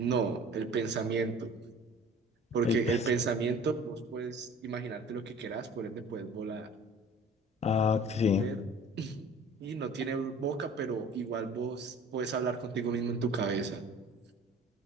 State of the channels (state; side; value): normal; both; correlation 0.46